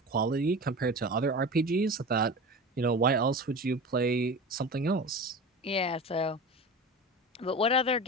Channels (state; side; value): normal; both; correlation 0.32